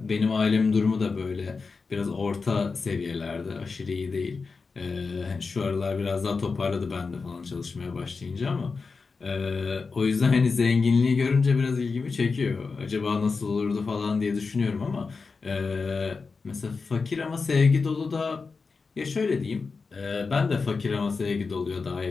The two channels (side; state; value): right; quieter; 4.6 dB